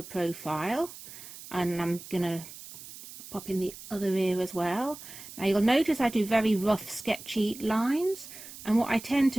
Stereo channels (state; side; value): noise; right; hiss, 15 dB below the sound